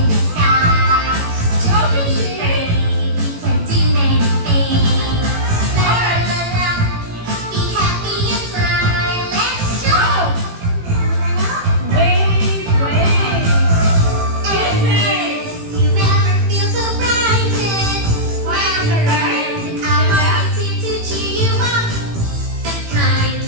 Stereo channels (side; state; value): left; late; 18 ms